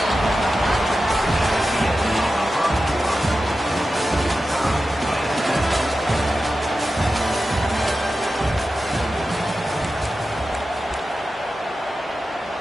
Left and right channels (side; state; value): both; normal; correlation 0.92